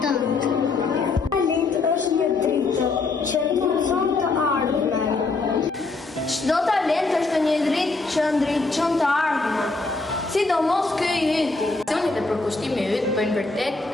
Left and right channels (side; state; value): right; quieter; 3.7 dB